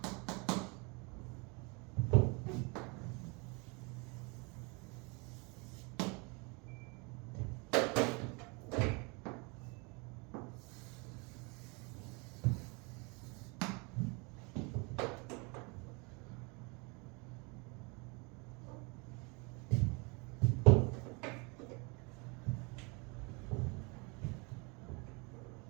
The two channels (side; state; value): left; quieter; 30.3 dB